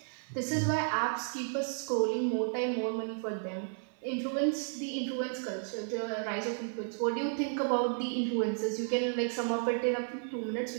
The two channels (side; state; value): left; silent; 56 dB below the other